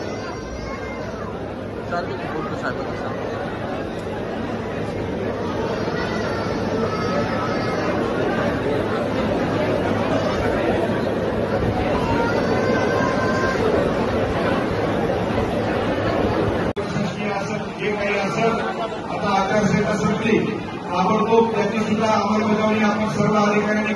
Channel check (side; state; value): both; identical; correlation 1.00